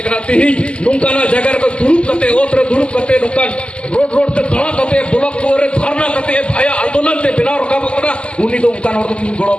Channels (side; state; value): right; late; 0.053 ms